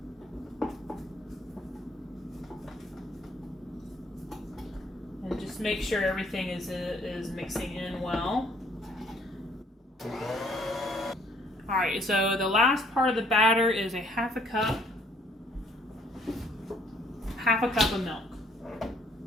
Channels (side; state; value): both; normal; correlation 0.63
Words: And just make sure everything is mixing in well. All right, so the last part of the batter is a half a cup of milk.